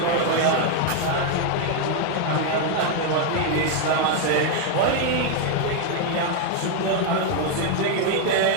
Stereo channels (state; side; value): different; both; correlation 0.01